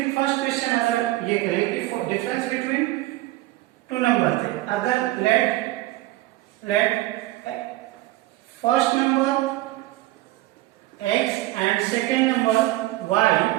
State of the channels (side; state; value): left; quieter; 17.6 dB